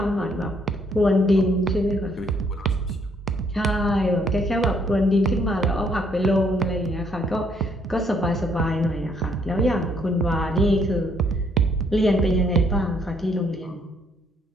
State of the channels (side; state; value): both; normal; correlation 0.68